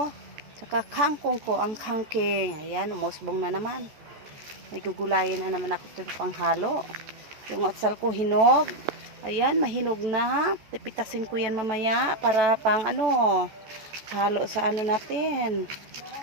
Saka kangkong ko, ang kangking. Ayan, umusbong na naman. May gugulayin na naman ako dito panghalo. Yung atsal ko hinog. Ayan, mahinog na. Pipitasin ko yan mamaya para pang ano, halo sa ano natin.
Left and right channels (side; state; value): left; late; 14 ms